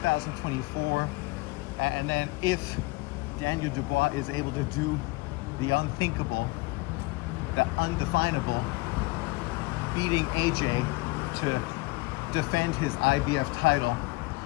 And then if Daniel Dubois is able to do the unthinkable, the undefinable, beating AJ to defend his IBF title,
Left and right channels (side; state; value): right; quieter; 23.6 dB